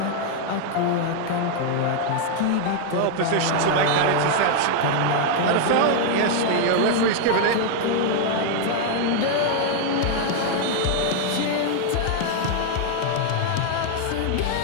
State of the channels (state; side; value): different; both; correlation 0.00